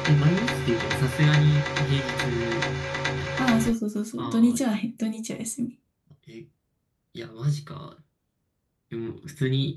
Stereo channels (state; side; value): identical; both; correlation 1.00